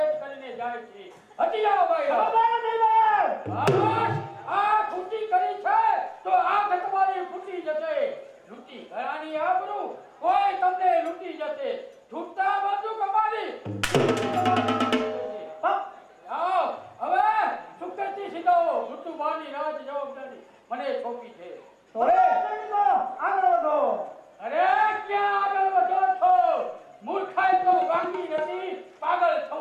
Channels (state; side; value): identical; both; correlation 1.00